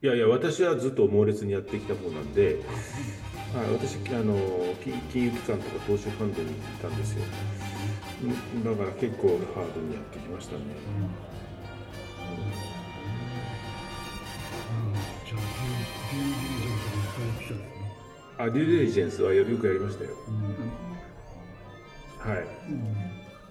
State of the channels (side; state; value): both; identical; correlation 1.00